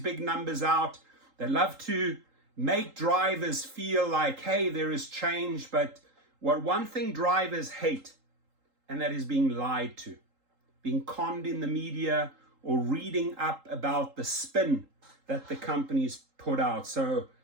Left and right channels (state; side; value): late; left; 3.8 ms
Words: numbers out. They love to make drivers feel like, hey, there is change. But one thing drivers hate, and that is being lied to, being conned in the media, or reading up about the spin that the companies put out. So